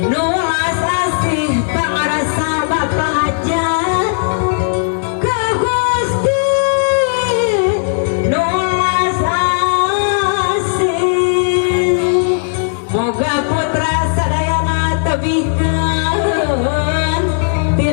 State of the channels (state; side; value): silent; right; digital silence